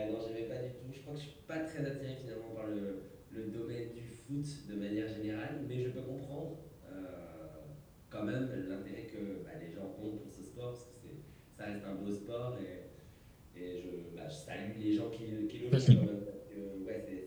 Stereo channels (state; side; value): identical; both; correlation 1.00